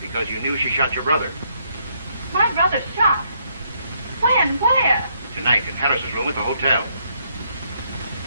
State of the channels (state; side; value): inverted; both; correlation -0.72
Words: you knew she shot your brother. My brother shot? When? Where? Tonight in Harris's room at the hotel.